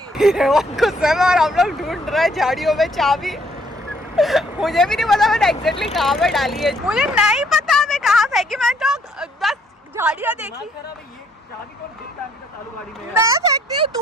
गुस्से में और हम लोग ढूंढ रहे हैं झाड़ियों में चाबी। मुझे भी नहीं पता मैंने एग्जैक्टली कहाँ पे डाली है, मुझे नहीं पता मैं कहाँ फेंकी। मैं तो बस झाड़ियाँ देखी। मैं फेंकती हूँ,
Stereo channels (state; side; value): normal; both; correlation 0.66